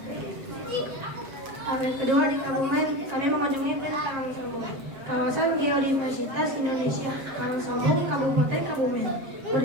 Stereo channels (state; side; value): late; left; 7.4 ms